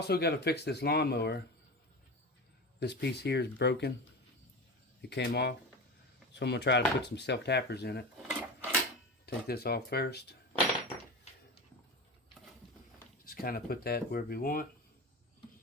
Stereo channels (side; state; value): both; normal; correlation 0.26